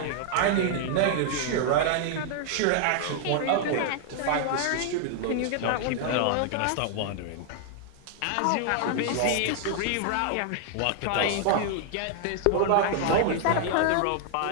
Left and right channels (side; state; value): both; different; correlation 0.00